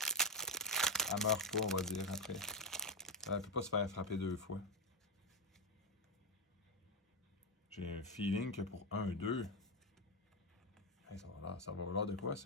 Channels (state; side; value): normal; both; correlation 0.06